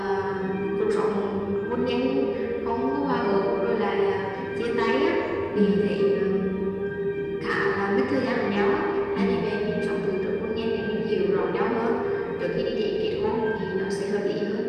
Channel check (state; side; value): identical; both; correlation 1.00